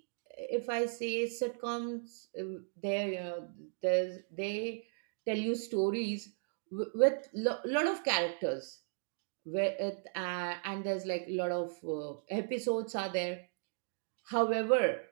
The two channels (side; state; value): left; silent; digital silence